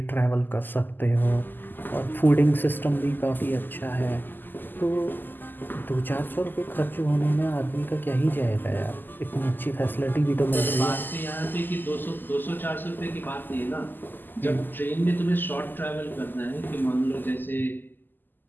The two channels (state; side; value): late; right; 0.090 ms